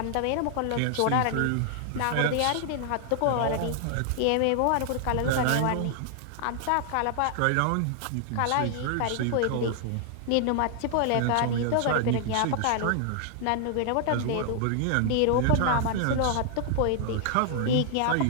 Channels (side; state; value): both; different; correlation 0.00